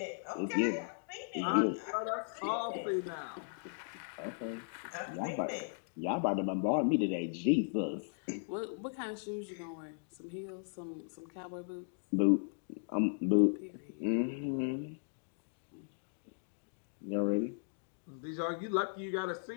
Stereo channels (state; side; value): silent; right; digital silence